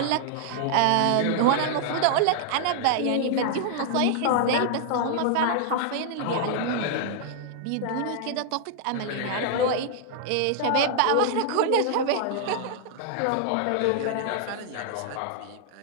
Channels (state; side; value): different; both; correlation 0.00